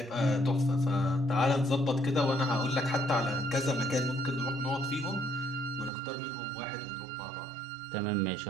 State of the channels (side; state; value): left; drops out; at 5.9 s